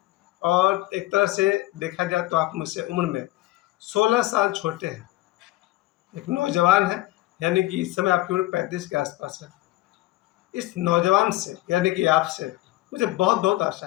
और एक तरह से देखा जाए तो आप मुझसे उम्र में 16 साल छोटे हैं, एक नौजवान है, यानी कि इस समय आपकी उम्र 35 के आसपास है। इस नौजवान से यानी कि आपसे मुझे बहुत बहुत आशा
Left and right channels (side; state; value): right; quieter; 18.1 dB